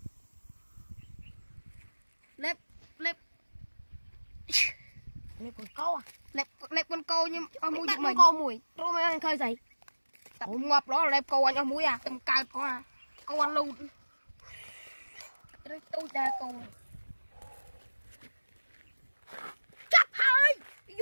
lép con câu à lép con câu nhưng ở mũi chúng mình câu mùi rồi mà anh khơi dậy tập ngọc đó là lép câu anh ở mũi à tầm cao có à câu ăn luôn tôi ta câu chắc hơi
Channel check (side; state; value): both; inverted; correlation -1.00